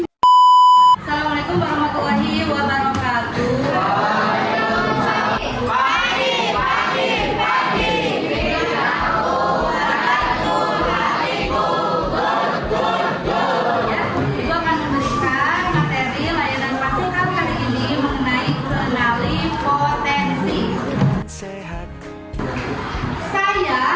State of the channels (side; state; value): both; identical; correlation 1.00